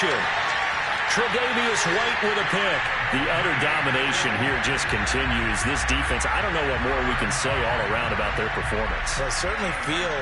Tre'Davious White with a pick. The utter domination here just continues. This defense, I don't know what more we can say all around about their performance. Well, it certainly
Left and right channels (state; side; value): identical; both; correlation 1.00